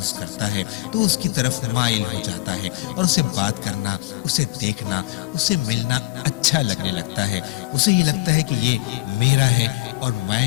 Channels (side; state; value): right; quieter; 18.7 dB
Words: کرتا ہے تو اس کی طرف مائل ہو جاتا ہے اور اسے بات کرنا، اسے دیکھنا، اسے ملنا اچھا لگنے لگتا ہے۔ اسے یہ لگتا ہے کہ یہ میرا ہے اور